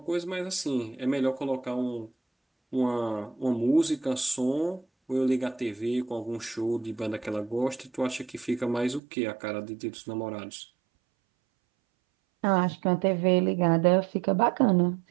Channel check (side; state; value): left; drops out; at 9.0 s